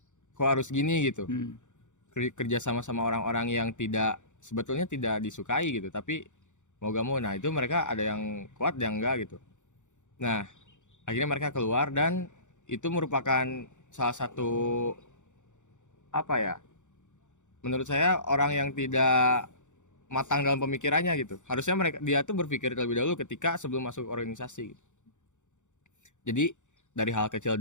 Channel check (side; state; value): right; late; 0.85 ms